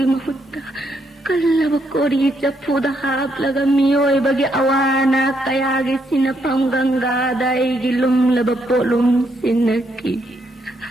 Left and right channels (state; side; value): normal; both; correlation 0.76